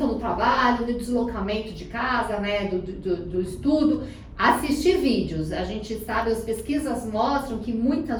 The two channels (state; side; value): identical; both; correlation 1.00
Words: no trabalho, no deslocamento de casa, do estudo, assistir vídeos. A gente sabe, as pesquisas mostram que